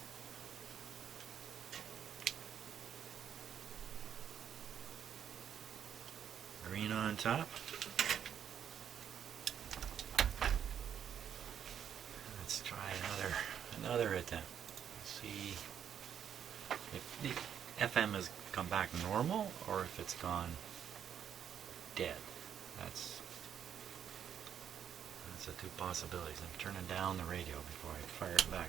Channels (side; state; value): left; quieter; 8.9 dB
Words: Green on top. Let's try another attempt. See if the FM has come back normal or if it's gone dead. That's the two possibilities. I'm turning down the radio before I fire it